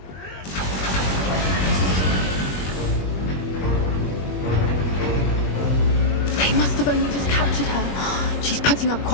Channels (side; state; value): right; late; 21 ms